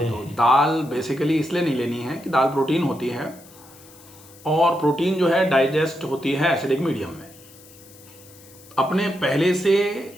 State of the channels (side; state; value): left; noise; hiss, 23 dB below the sound